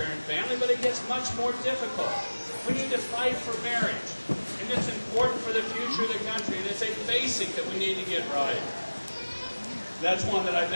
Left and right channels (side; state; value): both; inverted; correlation -1.00